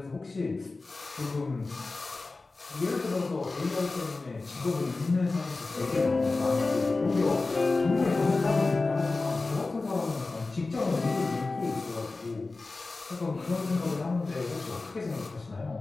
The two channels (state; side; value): quieter; right; 3.5 dB